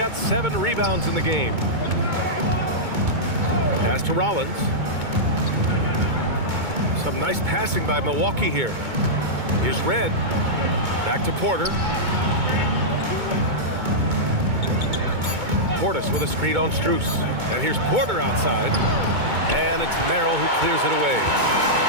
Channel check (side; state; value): left; late; 2.2 ms